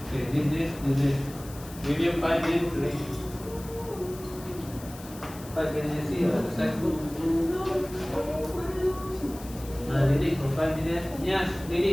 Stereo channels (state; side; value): noise; left; hiss, 17 dB below the sound